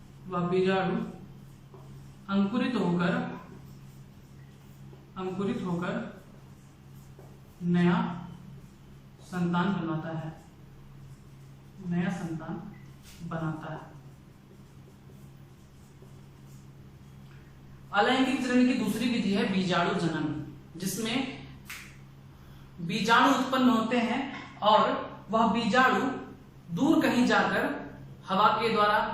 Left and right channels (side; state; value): both; identical; correlation 1.00